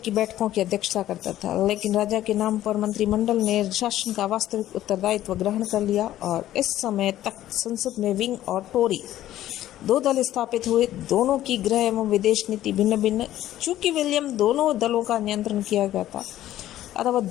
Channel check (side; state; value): right; quieter; 13.3 dB